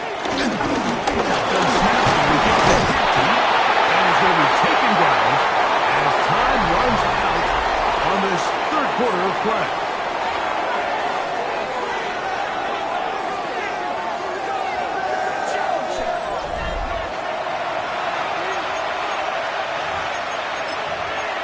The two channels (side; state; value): both; identical; correlation 1.00